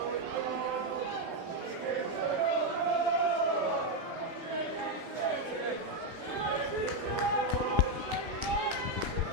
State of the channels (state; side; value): late; right; 8.8 ms